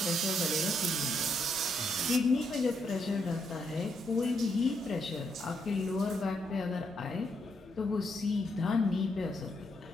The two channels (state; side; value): normal; both; correlation 0.77